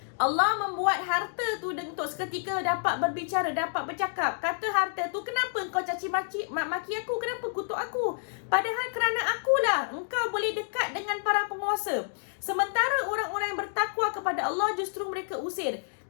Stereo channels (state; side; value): silent; right; digital silence